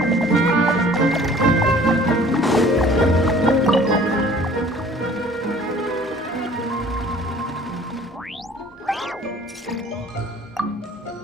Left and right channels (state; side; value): normal; both; correlation 0.51